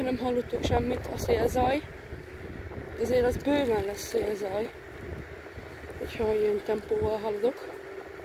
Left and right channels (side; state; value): both; identical; correlation 1.00